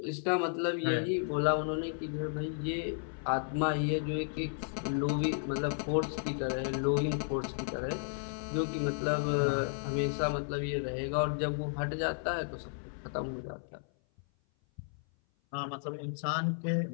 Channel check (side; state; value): right; silent; 55 dB below the other